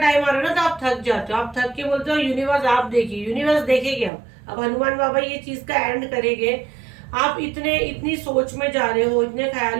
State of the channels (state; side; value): drops out; left; at 4.1 s